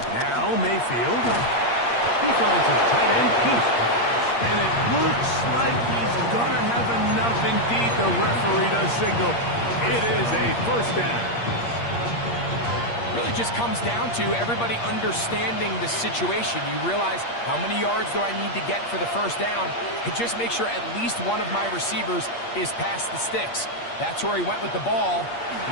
Now Mayfield. He finds his tight end, Keith. And it looks like he's going to have enough. Indeed, the referee does signal. It is a first down. Really just comes down to everybody understanding the situation. You realize how many yards do I need to get for the first down, and just make sure at least one of my receivers is past the sticks. That's where he went with the ball, and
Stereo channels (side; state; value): right; late; 8.5 ms